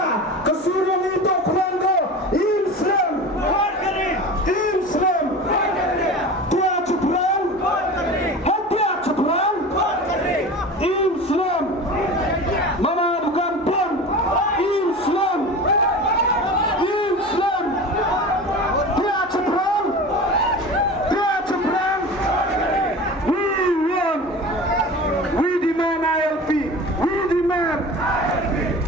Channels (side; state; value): both; normal; correlation 0.34